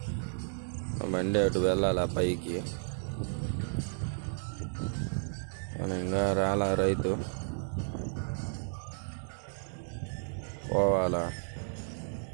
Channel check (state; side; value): silent; left; digital silence